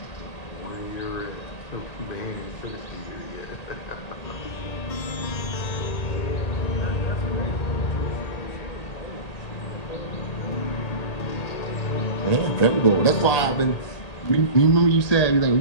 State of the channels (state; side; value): late; right; 1.9 ms